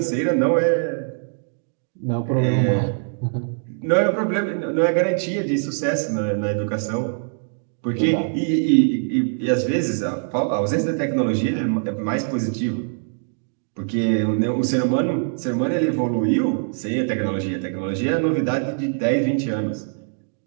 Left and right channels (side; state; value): left; silent; digital silence